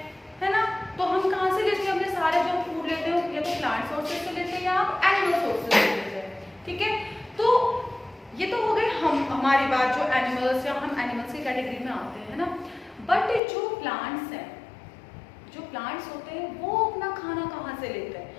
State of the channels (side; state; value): right; drops out; at 13.4 s